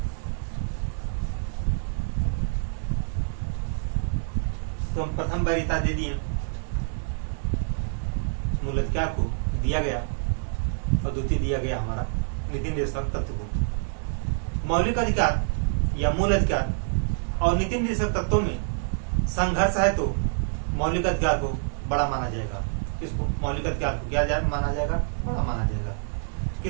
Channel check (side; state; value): left; silent; digital silence